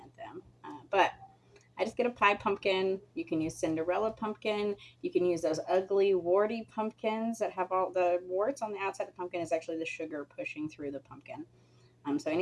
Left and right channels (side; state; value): both; identical; correlation 1.00